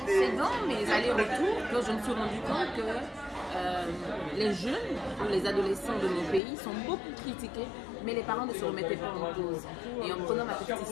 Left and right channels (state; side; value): drops out; right; at 6.4 s